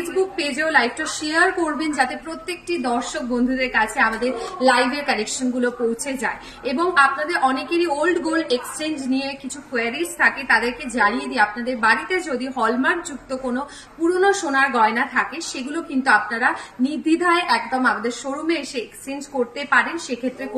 পেজেও লাইভটা শেয়ার করবেন, যাতে প্রত্যেকটি দর্শক বন্ধুদের কাছে আমাদের লাইভের কালেকশন গুলো পৌঁছে যায়। এবং আপনাদের অনেকেরই ওল্ড গোল্ড এক্সচেঞ্জ নিয়ে কিছু কোয়ারিজ থাকে, তাদেরকে জানিয়ে দিই আপনাদের বাড়িতে যদি হলমার্ক যুক্ত কোনো পুরনো সোনার গয়না থাকে সেগুলো কিন্তু আপনারা নির্দ্বিধায় একদম আমাদের শোরুমে এসে এক্সচেঞ্জ করতে পারেন। সেক্ষেত্রে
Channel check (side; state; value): both; identical; correlation 1.00